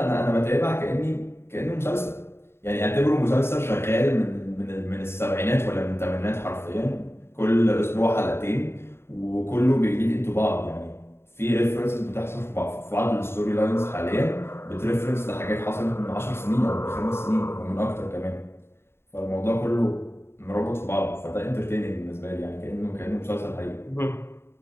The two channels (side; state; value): right; late; 0.12 ms